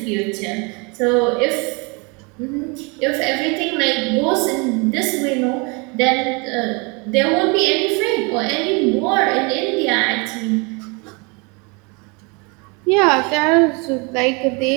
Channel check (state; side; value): quieter; left; 30.5 dB